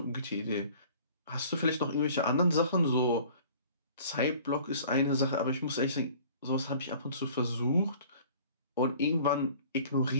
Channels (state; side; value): inverted; both; correlation -0.49